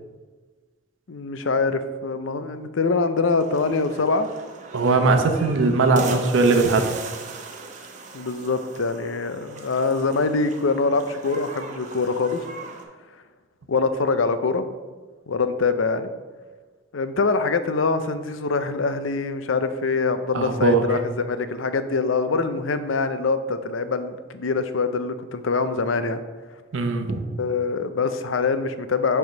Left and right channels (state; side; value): normal; both; correlation -0.07